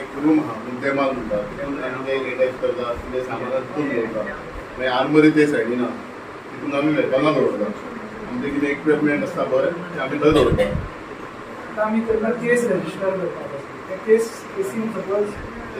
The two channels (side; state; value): both; identical; correlation 1.00